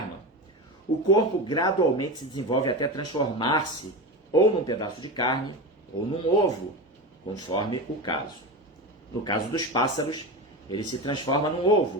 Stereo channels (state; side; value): normal; both; correlation 0.23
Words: o corpo gradualmente se desenvolve até transformar-se ou num pedaço de carne ou num ovo, conforme o caso. No caso dos pássaros, ele se transforma num